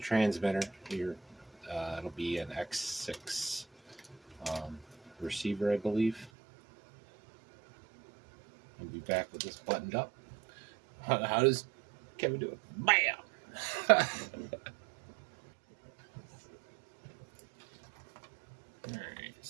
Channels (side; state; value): left; drops out; at 6.3 s